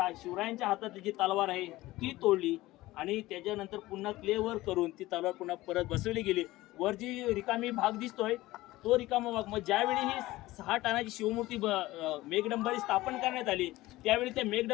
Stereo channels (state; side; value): quieter; right; 18.0 dB